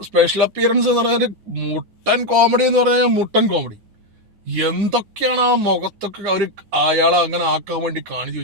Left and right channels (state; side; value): normal; both; correlation 0.05